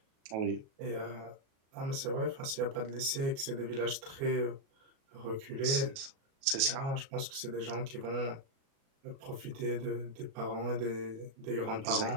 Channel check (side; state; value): left; late; 37 ms